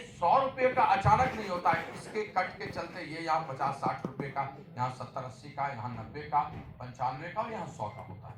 रुपए का अचानक नहीं होता है, इसके कट के चलते ये यहाँ 50-60 रुपए का, यहाँ 70-80 का, यहाँ 90 का, 95 का और यहाँ 100 का होता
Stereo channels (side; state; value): both; identical; correlation 1.00